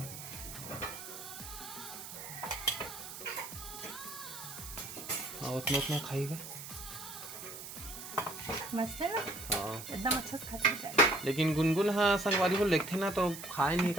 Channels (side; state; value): right; noise; hiss, 10 dB below the sound